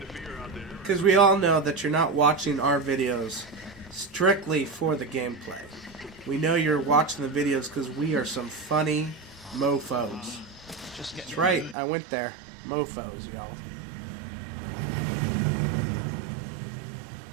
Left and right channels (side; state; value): left; drops out; at 11.8 s